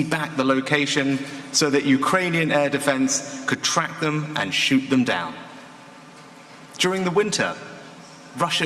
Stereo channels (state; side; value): identical; both; correlation 1.00